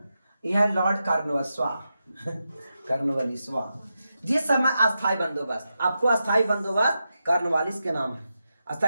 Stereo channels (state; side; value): inverted; both; correlation -0.88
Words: यह लॉर्ड कार्नवालिस जिस समय अस्थायी बंदोबस्त, आपको अस्थायी बंदोबस्त कार्नवालिस के नाम है,